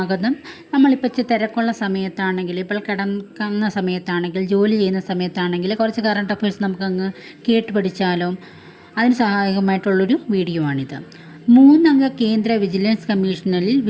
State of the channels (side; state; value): both; identical; correlation 1.00